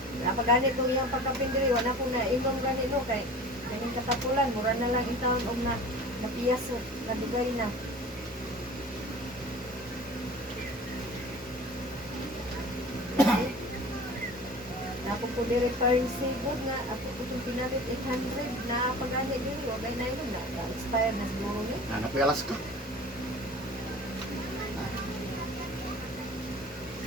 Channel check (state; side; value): normal; both; correlation 0.40